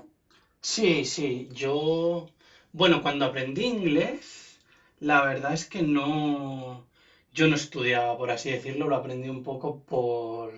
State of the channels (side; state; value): both; identical; correlation 1.00